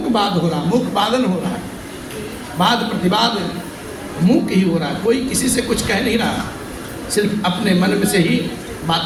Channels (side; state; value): both; identical; correlation 1.00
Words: बाद हो रहा, मुक वादन हो रहा है, वाद प्रतिवाद मुक ही हो रहा है। कोई किसी से कुछ कह नहीं रहा, सिर्फ अपने मन में से ही